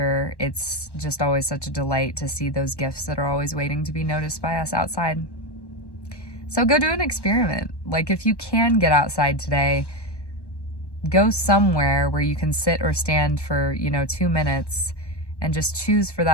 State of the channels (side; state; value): right; late; 1.1 ms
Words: it's just always such a delight to see those gifts that are always waiting to be noticed by us outside. So go do an experiment. Like, if you can get outside today, go somewhere where you can sit or stand for, 2 minutes, and just choose for